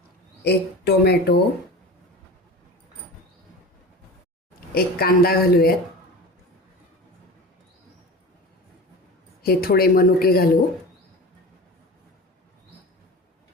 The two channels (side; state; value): both; normal; correlation 0.33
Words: 1 टोमॅटो, 1 कांदा घालूयात. हे थोडे मनुके घालू.